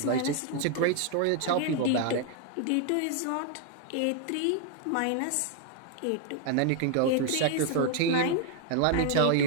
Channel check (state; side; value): different; both; correlation 0.00